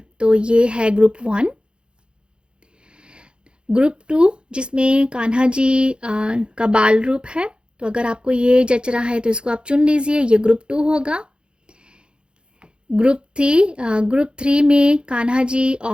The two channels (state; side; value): late; left; 0.053 ms